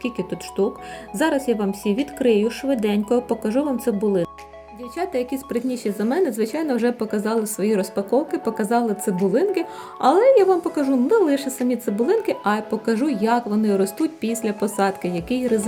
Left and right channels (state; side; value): identical; both; correlation 1.00